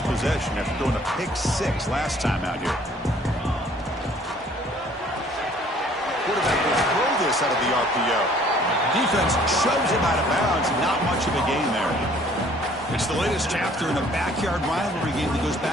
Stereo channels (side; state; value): both; normal; correlation 0.57